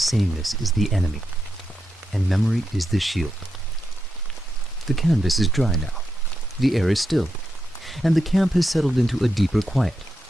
is the enemy, and memory is the shield. The canvas is dry now. The air is still, and the camp has settled into a deeper quiet.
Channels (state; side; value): normal; both; correlation 0.86